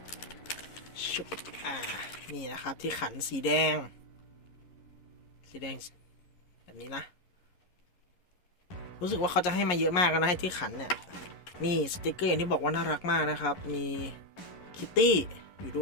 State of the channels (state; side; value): late; right; 11 ms